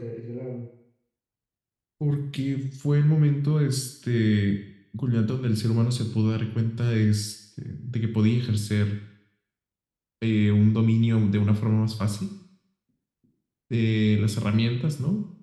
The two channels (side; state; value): both; identical; correlation 1.00